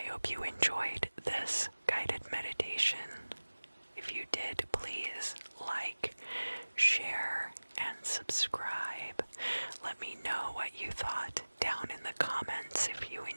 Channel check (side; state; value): both; inverted; correlation -1.00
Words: hope you enjoyed this guided meditation. If you did, please like, share, and subscribe. Let me know what you thought down in the comments if you